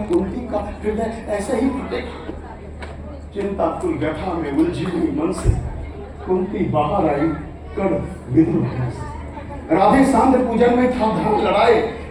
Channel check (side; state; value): both; identical; correlation 1.00